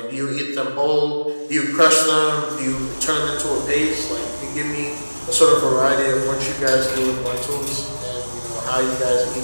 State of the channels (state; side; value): inverted; both; correlation -1.00